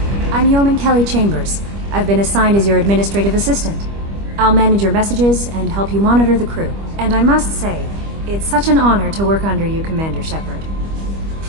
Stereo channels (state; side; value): late; left; 25 ms